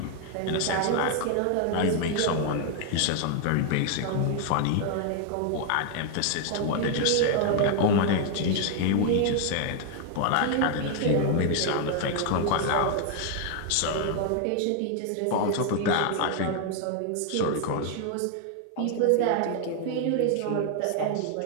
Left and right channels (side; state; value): both; different; correlation 0.00